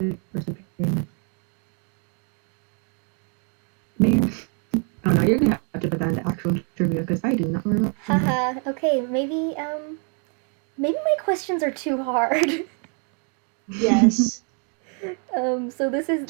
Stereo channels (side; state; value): left; quieter; 39.9 dB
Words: Maybe. Oh no, you're gonna have to put that in the actual trivia because I do not remember. Haha. Okay, maybe my questions are too hard. Yes. So this